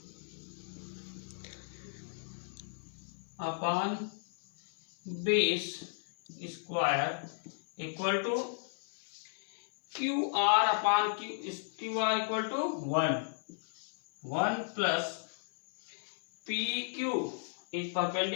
base square equal to QR upon QR equal to 1 plus PQ is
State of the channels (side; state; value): right; silent; 55 dB below the other